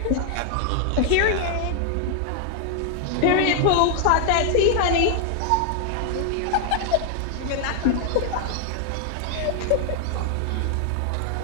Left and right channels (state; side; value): different; both; correlation 0.00